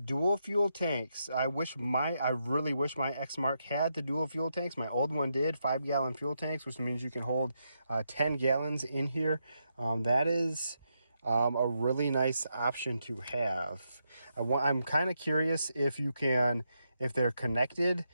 fuel tanks. I really wish my Exmark had the dual fuel tanks. My old one did, 5-gallon fuel tanks, which means you can hold 10 gallons in here. That is a really nice option to have. I'm kind of curious if they're connected,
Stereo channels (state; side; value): inverted; both; correlation -0.83